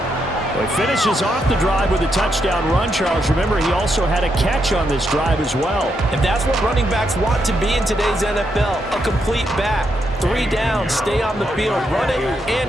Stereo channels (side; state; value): both; normal; correlation 0.80